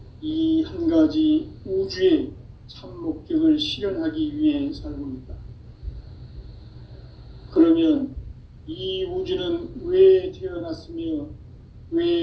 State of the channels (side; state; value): both; identical; correlation 1.00